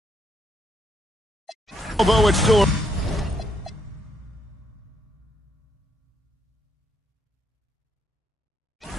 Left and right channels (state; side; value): normal; both; correlation 0.73